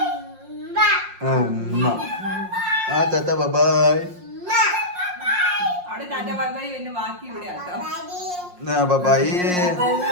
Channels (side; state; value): left; late; 5.6 ms